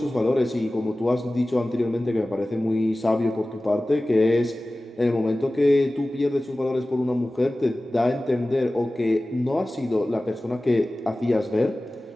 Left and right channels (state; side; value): normal; both; correlation 0.97